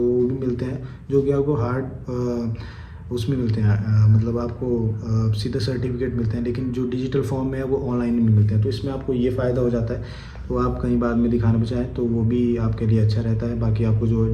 वो भी मिलते हैं, जो कि आपको हार्ड उसमें मिलते हैं, मतलब आपको सीधा सर्टिफिकेट मिलते हैं, लेकिन जो डिजिटल फॉर्म में है वो ऑनलाइन में मिलते हैं। तो इसमें आपको ये फ़ायदा हो जाता है, तो आप कहीं बाद में दिखाना चाहें तो वो भी आपके लिए अच्छा रहता है। बाकी आपको जो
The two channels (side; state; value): both; identical; correlation 1.00